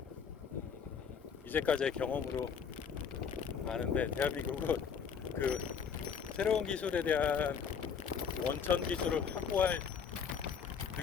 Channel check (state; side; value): quieter; right; 6.7 dB